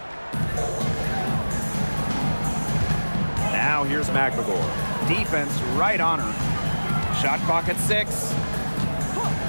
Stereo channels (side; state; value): both; inverted; correlation -1.00